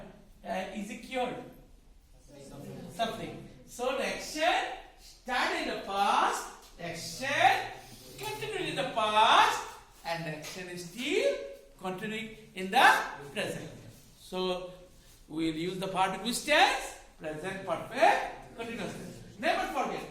is he cured? Suffering. So the action started in the past, the action continued in the past, and the action is still continuing in the present. So we'll use the verb in which tense? Present perfect continuous tense. Never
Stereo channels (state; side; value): identical; both; correlation 1.00